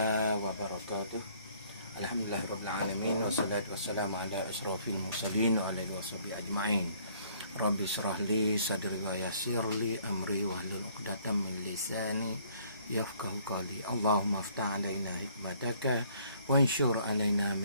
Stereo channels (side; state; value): both; inverted; correlation -0.61